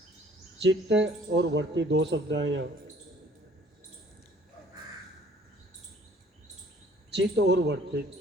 चित्त और वर्ती दो शब्द हैं यहाँ। चित्त और वर्ती,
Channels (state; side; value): normal; both; correlation 0.56